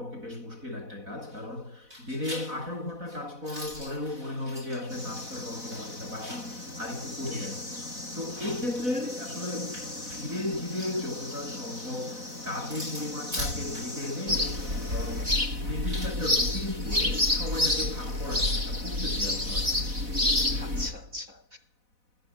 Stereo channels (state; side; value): late; left; 4.0 ms